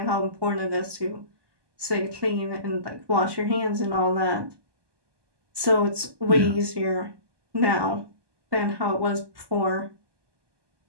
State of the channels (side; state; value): left; late; 1.2 ms